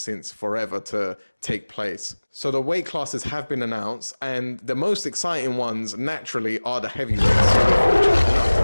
forever to take place. So the weight classes have been announced, and the most exciting ones naturally are the heavyweights. So we're fortunate enough to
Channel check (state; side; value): inverted; both; correlation -1.00